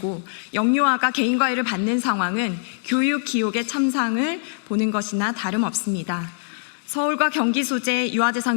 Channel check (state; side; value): silent; right; digital silence